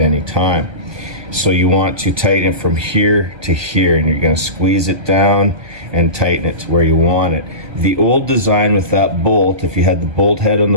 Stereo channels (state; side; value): late; left; 1.2 ms